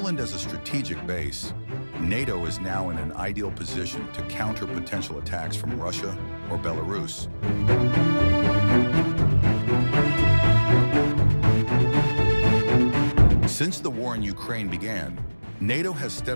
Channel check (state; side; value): inverted; both; correlation -1.00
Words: as a strategic base, NATO is now in an ideal position to counter potential attacks from Russia or Belarus. Since the war in Ukraine began, NATO has